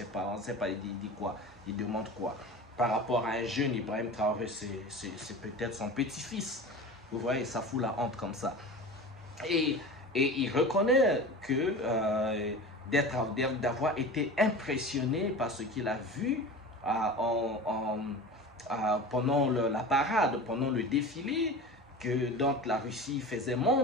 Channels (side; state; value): both; normal; correlation 0.33